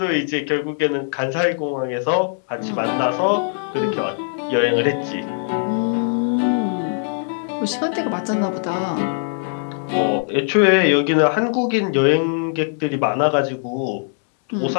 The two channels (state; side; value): silent; right; 65 dB below the other